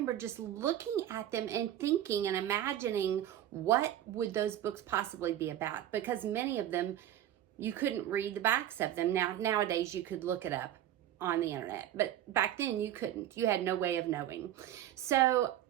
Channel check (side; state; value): left; quieter; 11.8 dB